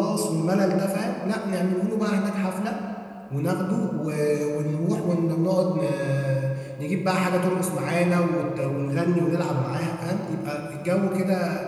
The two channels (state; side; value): identical; both; correlation 1.00